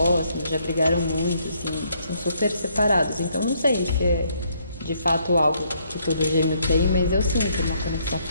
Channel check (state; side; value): inverted; both; correlation -0.70